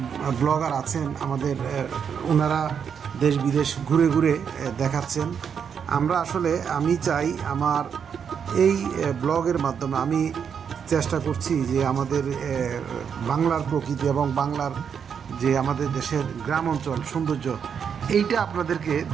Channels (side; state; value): left; quieter; 7.3 dB